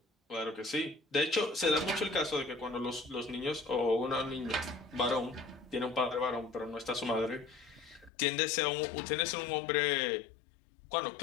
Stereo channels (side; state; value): right; drops out; at 8.1 s